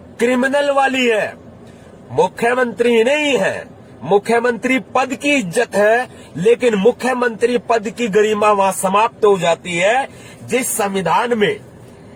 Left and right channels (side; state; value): both; identical; correlation 1.00